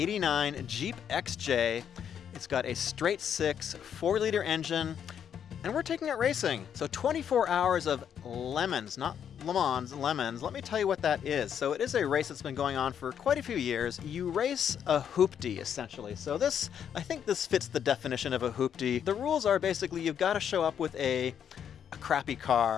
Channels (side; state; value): right; quieter; 8.6 dB